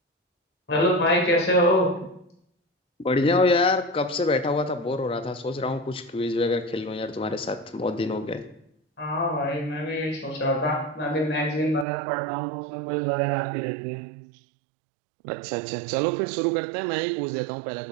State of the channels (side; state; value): left; drops out; at 11.9 s